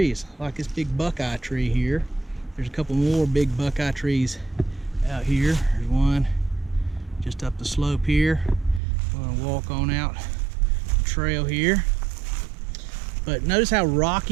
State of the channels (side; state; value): left; drops out; at 8.8 s